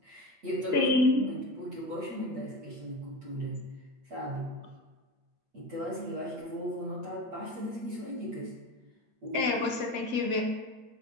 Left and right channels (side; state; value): left; late; 8.5 ms